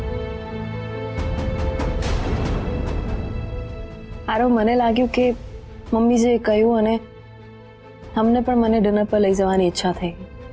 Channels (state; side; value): identical; both; correlation 1.00